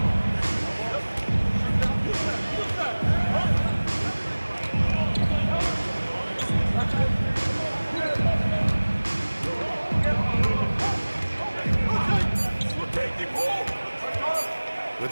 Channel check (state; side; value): inverted; both; correlation -1.00